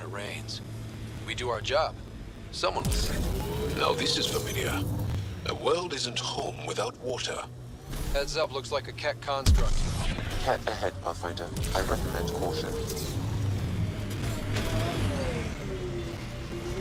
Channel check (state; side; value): identical; both; correlation 1.00